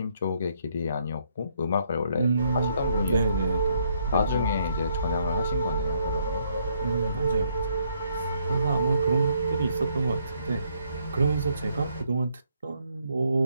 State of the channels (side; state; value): both; inverted; correlation -0.71